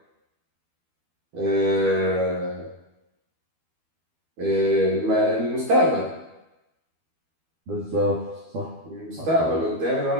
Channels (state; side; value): late; left; 12 ms